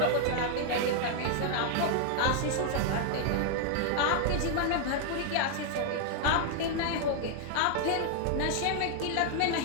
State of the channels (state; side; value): different; both; correlation 0.00